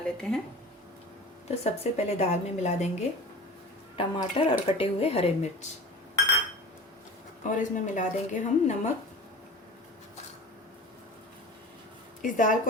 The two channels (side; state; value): both; normal; correlation 0.37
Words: लेते हैं। तो सबसे पहले दाल में मिला देंगे टमाटर और कटे हुए हरे मिर्च, और इसमें मिला देंगे हम नमक। इस दाल